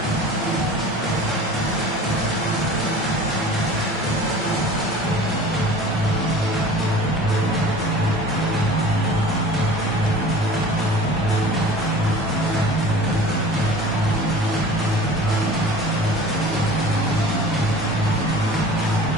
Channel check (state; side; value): normal; both; correlation 0.42